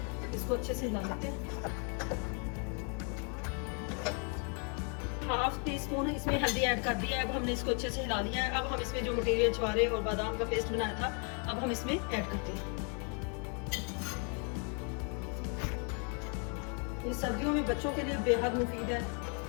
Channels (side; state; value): right; quieter; 38.9 dB